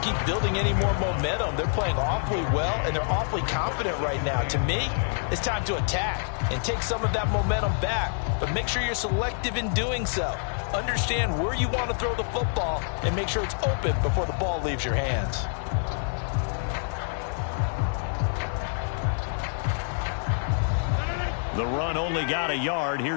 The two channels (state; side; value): silent; right; digital silence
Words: building any more momentum. They're playing awfully well, and they're awfully confident right now. To me, it's time to attack and take some of that momentum back, but make sure you're selective in doing so. Understand where you want to throw the football and make sure it's open before the ball leaves your hands. The run only got a yard.